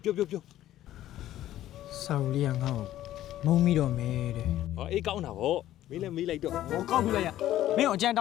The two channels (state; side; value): quieter; right; 13.3 dB